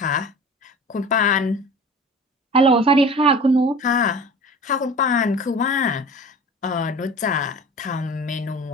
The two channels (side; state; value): both; normal; correlation 0.39